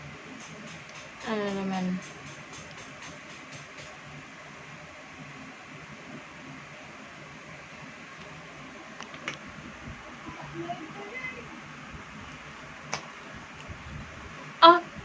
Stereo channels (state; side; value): identical; both; correlation 1.00